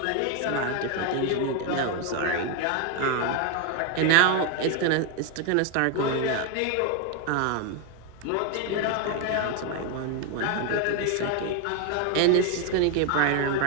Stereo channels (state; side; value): different; both; correlation 0.01